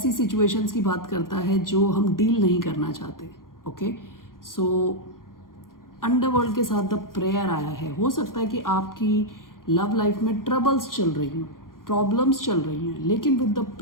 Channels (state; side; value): late; right; 0.91 ms